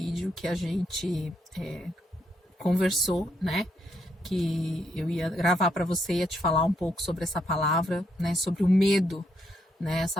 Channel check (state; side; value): normal; both; correlation 0.76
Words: que a gente conversou, né? Que eu ia gravar para você, ia te falar um pouco sobre essa palavra, né? Sobre o medo, né?